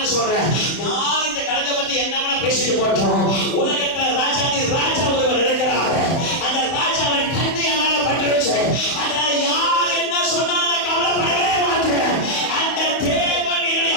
சொல்றேன், யார் இந்த கலத்தை பத்தி என்ன பேசிட்டு போட்டோம். உலகத்துல ராஜா ஒருவர் இருக்கிறார். அந்த ராஜாவின் கண்ணியால பட்டுருச்சு. அதனால யார் என்ன சொன்னாலும் கவலைப்படவே மாட்டேன். அந்த தேவன் என்னுடைய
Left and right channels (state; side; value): late; right; 31 ms